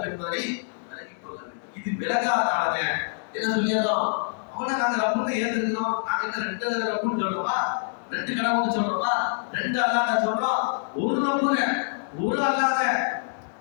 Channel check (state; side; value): silent; right; digital silence